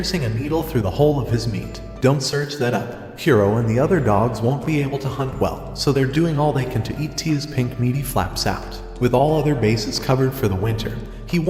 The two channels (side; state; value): both; identical; correlation 1.00